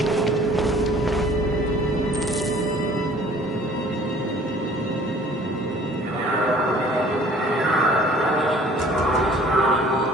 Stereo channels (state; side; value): normal; both; correlation 0.52